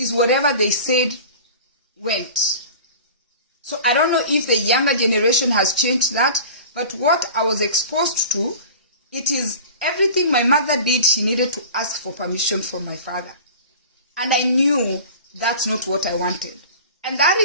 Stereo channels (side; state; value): both; inverted; correlation -0.40